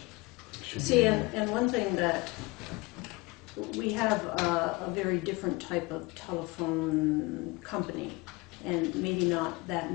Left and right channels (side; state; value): right; quieter; 24.0 dB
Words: that should be See, in there. and one thing that, we have a very different type of telephone company, and maybe not that